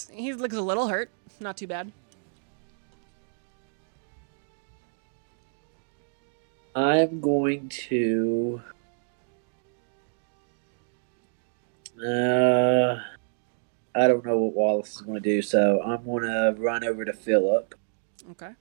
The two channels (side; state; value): left; silent; digital silence